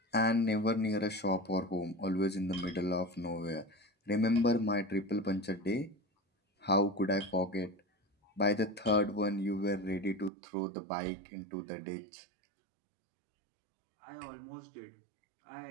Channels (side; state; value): left; drops out; at 10.3 s